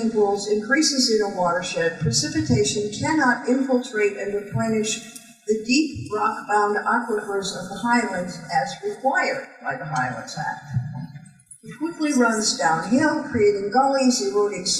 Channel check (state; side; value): identical; both; correlation 1.00